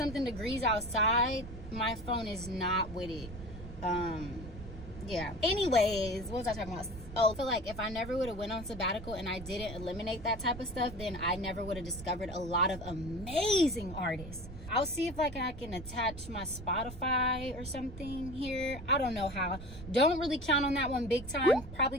degrees outside, my phone is not with it. Yeah. Anyways, what was I talking about? Oh, I feel like if I never would have went on sabbatical and I didn't eliminate that type of stuff, then I never would have discovered a lot of amazing artists. I'll see if like I can attach my Spotify or something here. I don't know how. Don't really count on that one big time. Probably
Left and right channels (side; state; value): right; noise; rumble, 12 dB below the sound